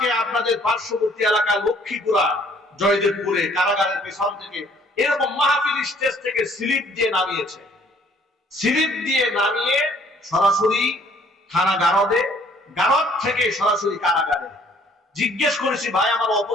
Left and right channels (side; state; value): both; normal; correlation 0.61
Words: আপনাদের পার্শ্ববর্তী এলাকা লক্ষ্মীপুরা, জয়দেবপুরে কারাগারের পেছন থেকে এরকম মাহফিল স্টেজ থেকে স্লিপ দিয়ে নামিয়েছে। স্লিপ দিয়ে নামিয়ে সরাসরি থানা গারদে, গারদ থেকে সরাসরি কারাগারে। জিজ্ঞেস করেছি, ভাই আমার